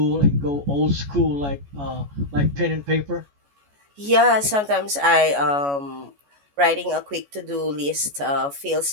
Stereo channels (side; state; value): left; late; 14 ms